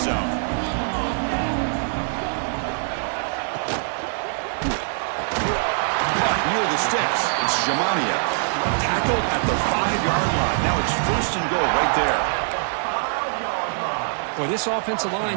zone. Near the sticks, it's Jamania. Tackled at the 5-yard line. Now it's 1st and goal right there. Boy, this offensive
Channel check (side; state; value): left; silent; 63 dB below the other